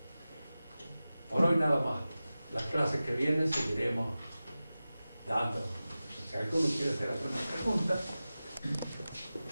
Por hoy nada más. Las clases que vienen seguiremos dando. Si alguno quiere hacer alguna pregunta,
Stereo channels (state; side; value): inverted; both; correlation -0.95